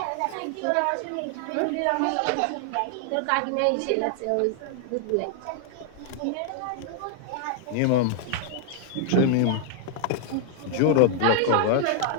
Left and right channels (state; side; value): different; both; correlation 0.00